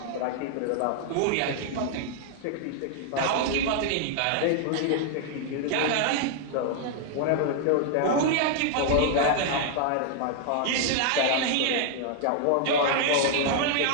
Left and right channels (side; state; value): both; different; correlation 0.00